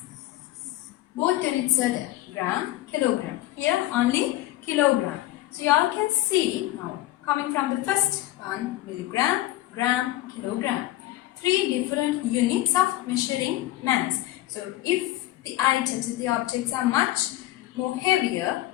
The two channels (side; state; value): right; quieter; 16.0 dB